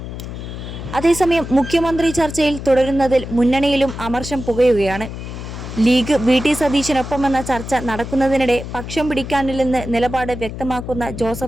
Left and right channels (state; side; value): noise; left; hum, 9 dB below the sound